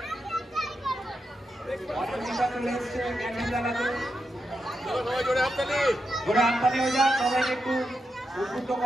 জোরে হাততালি হয়ে যাক, সবাইকে একটু উদ্বুদ্ধ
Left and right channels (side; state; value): both; normal; correlation 0.86